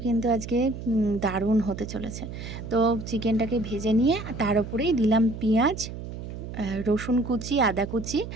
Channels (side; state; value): right; noise; hum, 9 dB below the sound